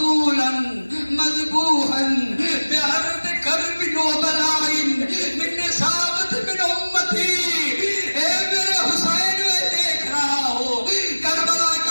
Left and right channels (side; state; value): both; inverted; correlation -1.00